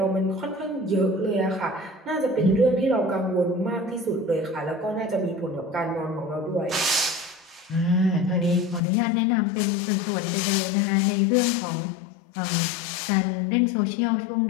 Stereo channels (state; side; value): drops out; right; at 8.8 s